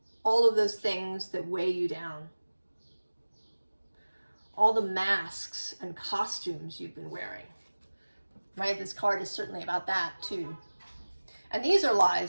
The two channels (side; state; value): both; inverted; correlation -1.00